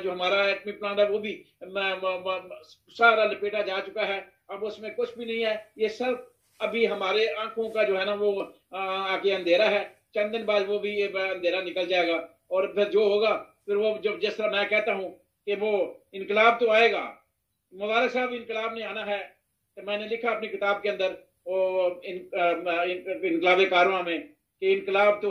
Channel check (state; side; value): identical; both; correlation 1.00